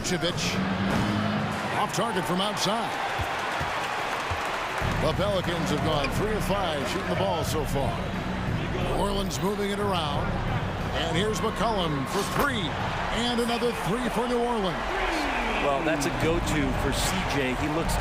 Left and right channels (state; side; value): identical; both; correlation 1.00